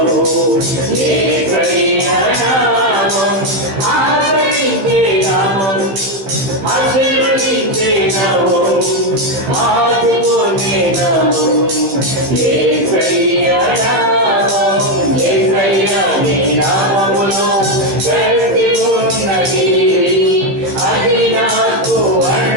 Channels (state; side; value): late; left; 15 ms